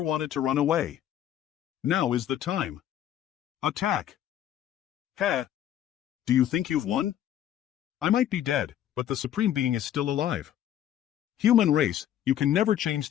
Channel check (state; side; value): quieter; right; 11.2 dB